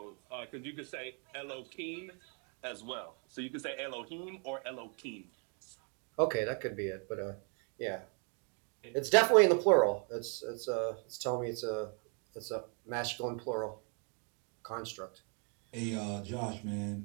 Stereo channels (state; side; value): quieter; left; 38.7 dB